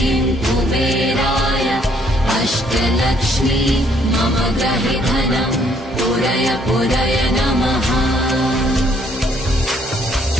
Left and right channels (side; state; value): both; normal; correlation 0.66